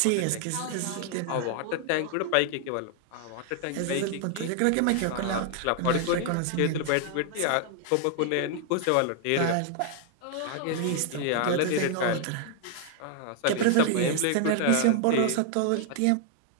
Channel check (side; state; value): both; different; correlation 0.00